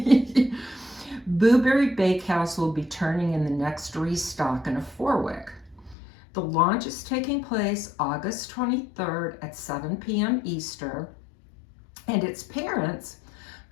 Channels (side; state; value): right; drops out; at 6.0 s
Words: BooBerry Bakehouse will be turning in the next restock in a 4-wick. The launch is taking place August 23rd at 7 p.m. Eastern, and its parents,